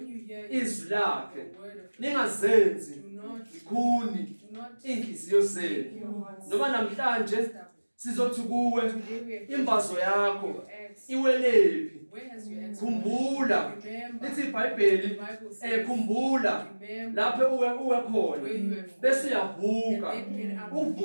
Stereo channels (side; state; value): both; inverted; correlation -1.00